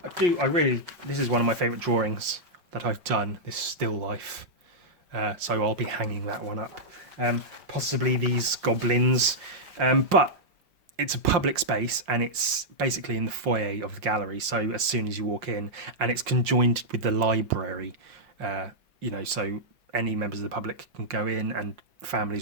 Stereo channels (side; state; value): left; late; 5.6 ms